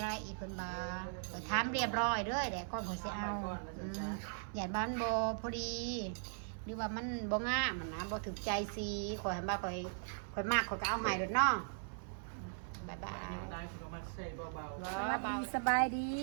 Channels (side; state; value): left; silent; 52 dB below the other